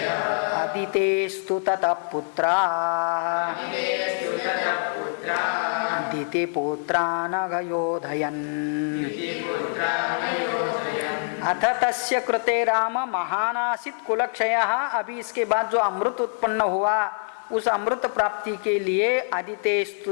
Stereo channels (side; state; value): right; silent; digital silence